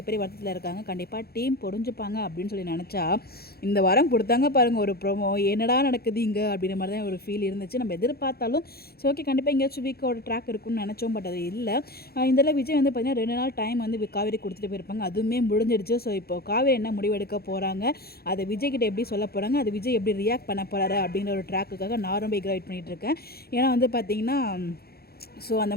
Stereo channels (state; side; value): late; right; 0.45 ms